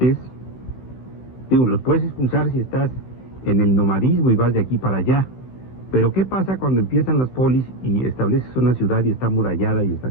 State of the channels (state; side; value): late; right; 16 ms